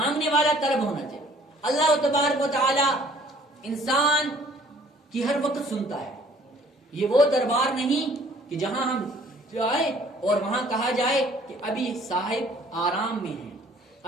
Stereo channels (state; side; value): normal; both; correlation 0.56